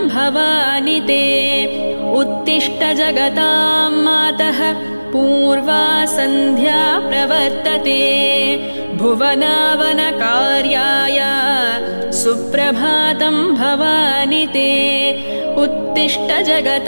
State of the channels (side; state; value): both; inverted; correlation -1.00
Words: भवानि ते। उत्तिष्ठ जगतां मातः पूर्वा सन्ध्या प्रवर्तते भुवनावनकार्याय सुप्रभातं भवानि ते। उत्तिष्ठ